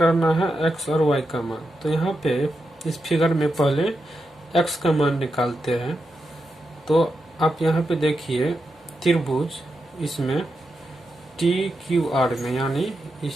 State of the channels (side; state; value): both; normal; correlation 0.87